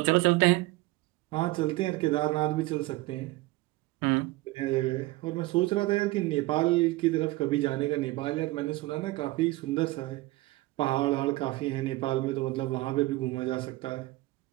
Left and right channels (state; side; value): quieter; left; 20.0 dB